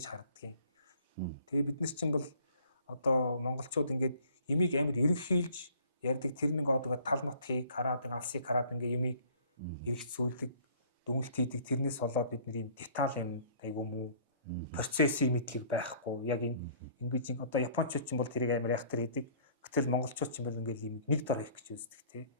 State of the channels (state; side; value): inverted; both; correlation -0.55